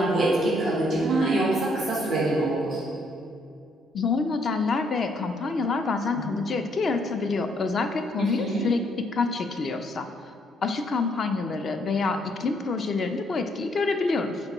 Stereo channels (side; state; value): both; normal; correlation 0.70